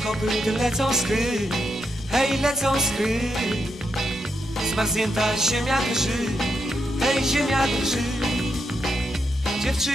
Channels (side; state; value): left; noise; rumble, 26 dB below the sound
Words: kopyt lecą skry, hej, lecą skry. Zmarznięta ziemia drży, hej, ziemia drży.